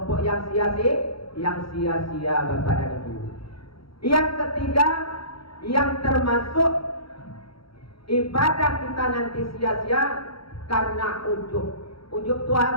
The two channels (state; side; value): late; right; 0.75 ms